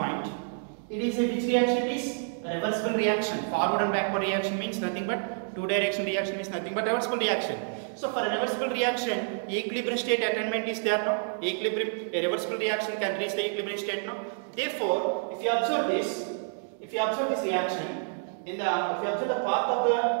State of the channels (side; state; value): left; silent; 59 dB below the other